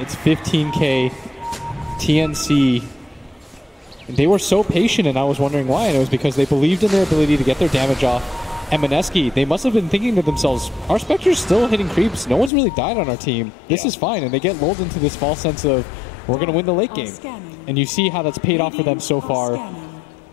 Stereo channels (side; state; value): right; drops out; at 12.5 s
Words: It's 15K. TNC, they were so patient, and I was wondering why. And it was because they believed in their ability to get their damage off. And Mineski, they must have been thinking to themselves, our Spectre's still hitting creeps. No one's really died on our team. This is fine. And they get lulled into this false sense of, we're going to win the late game. And you see how that's paid off for them so far.